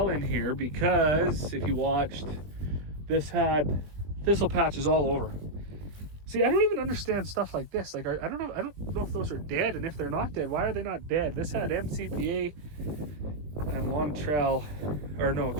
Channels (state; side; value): late; left; 21 ms